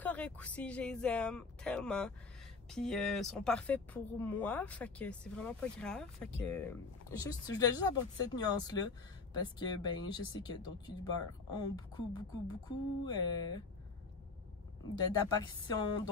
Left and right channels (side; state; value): right; quieter; 4.2 dB